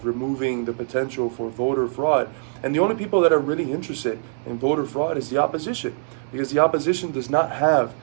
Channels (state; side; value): silent; left; digital silence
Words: removing the potential for voter fraud. And the only people that are really interested in voter fraud is the opposition, because the opposition does not have